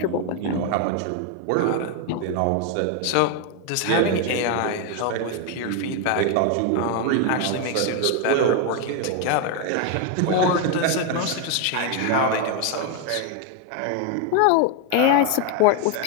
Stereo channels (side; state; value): both; different; correlation 0.01